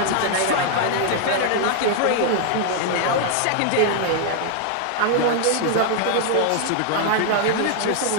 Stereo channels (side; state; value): both; different; correlation 0.00